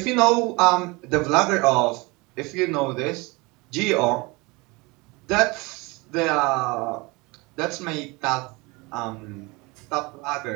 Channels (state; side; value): quieter; left; 25.3 dB